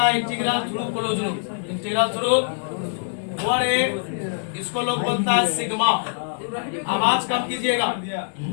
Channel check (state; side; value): silent; right; digital silence